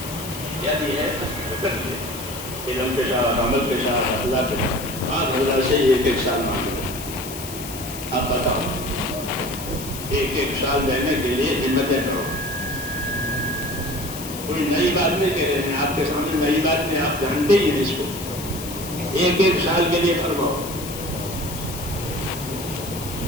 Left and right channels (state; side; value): noise; left; hiss, 10 dB below the sound